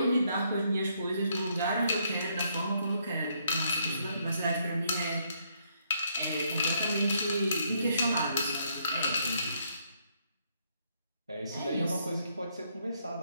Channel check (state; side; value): inverted; both; correlation -0.72